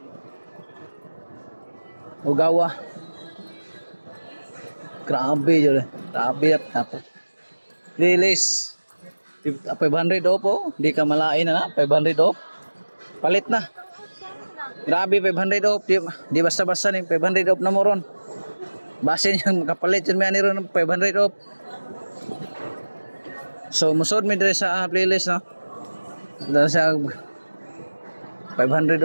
Ugawa. Grabe dyan. Grabe, tapos. Release. 500 off po. Hindi ka malain na 500 off. Palit na. Grabe, 500 off. Di basta-basta ni 500 off na mo ron. Basin yung kapalit yun may aniro ng 500 off. So, musod mi dire sa playlist, no? Dahil sa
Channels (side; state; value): both; inverted; correlation -1.00